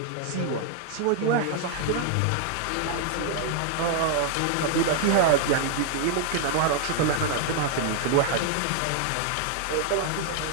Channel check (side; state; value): both; different; correlation 0.00